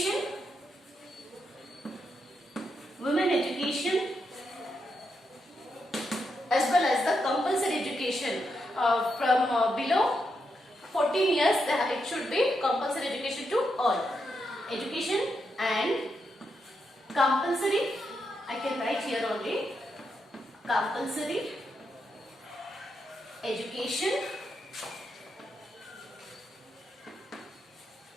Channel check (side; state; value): both; normal; correlation 0.83